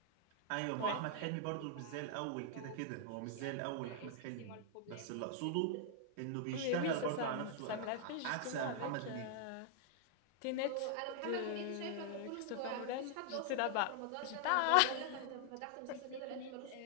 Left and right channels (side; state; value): both; different; correlation 0.00